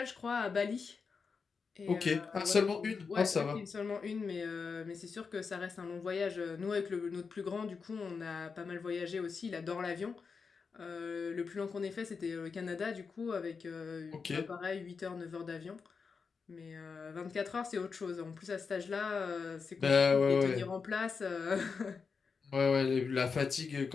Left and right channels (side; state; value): right; quieter; 5.3 dB